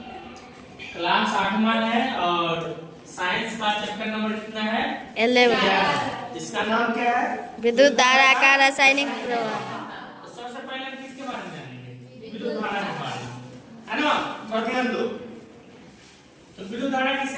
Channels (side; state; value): both; identical; correlation 1.00